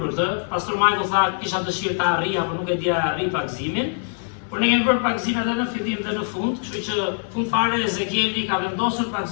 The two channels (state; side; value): silent; right; 57 dB below the other